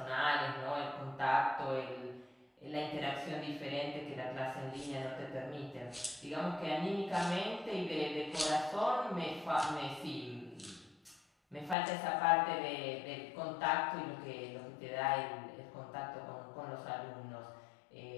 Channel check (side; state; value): right; drops out; at 11.8 s